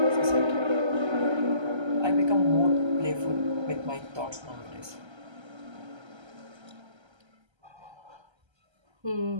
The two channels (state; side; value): late; left; 1.3 ms